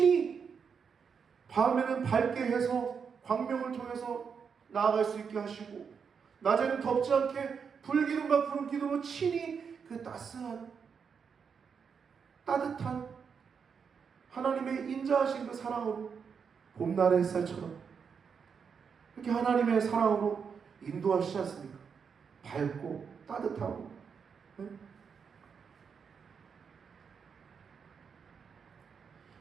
밤에는 밝게 해서 광명을 통해서 나아갈 수 있게 하시고 낮에는 덥지 않게 불기둥과 구름기둥으로 친히 그 따뜻한 하나님의 인자하신 그 사랑으로 봄날의 햇살처럼 이렇게 하나님의 사랑으로 인도하시지 않습니까? 밝고 따뜻하고. 네?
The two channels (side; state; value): left; quieter; 6.3 dB